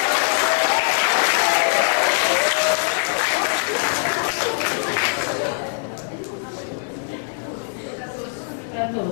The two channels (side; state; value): right; silent; digital silence